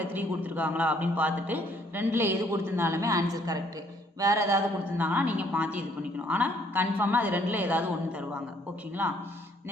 3 கொடுத்துருக்காங்களா அப்படின்னு பார்த்துட்டு 2ல் எது கொடுத்துருந்தாலுமே ஆன்சர் கரெக்டு. வேறு ஏதாவது கொடுத்துருந்தாங்கன்னா நீங்கள் மாற்றி இது பண்ணிக்கணும். ஆனால் கன்ஃபார்மாக அது 2ல் ஏதாவது ஒன்று தருவாங்க. ஓகேங்களா?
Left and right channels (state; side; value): normal; both; correlation 0.64